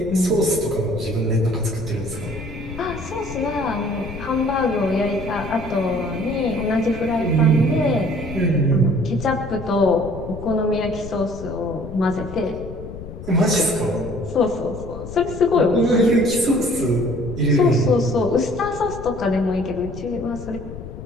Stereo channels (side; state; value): left; noise; rumble, 11 dB below the sound